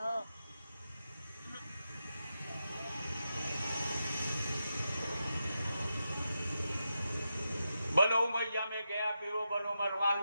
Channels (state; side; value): inverted; both; correlation -0.88